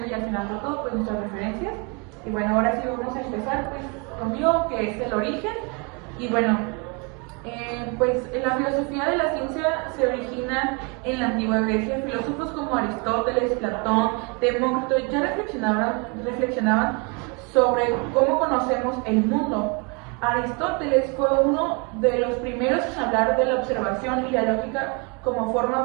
y al final de todo, pues nuestras referencias. Y bueno, ahora sí vamos a empezar pues conmigo, que es el origen. Y bueno, pues la filosofía de la ciencia se origina en la antigua Grecia. Filósofos como Aristóteles, Platón, Demócrito ya reflexionaban sobre cómo conocemos el mundo. Aristóteles fue uno de los primeros en hablar de la observación y la lógica como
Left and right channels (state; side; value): quieter; left; 32.2 dB